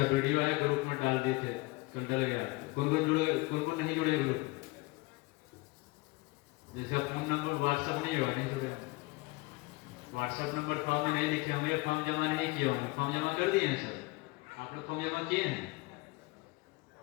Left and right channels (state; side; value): quieter; right; 23.8 dB